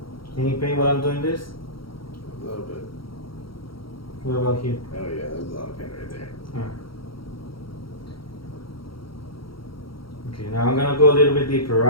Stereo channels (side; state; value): right; late; 0.74 ms